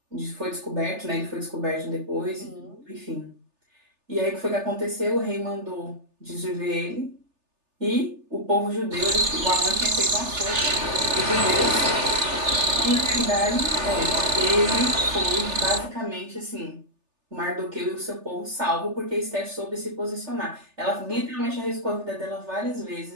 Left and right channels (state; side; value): late; left; 3.4 ms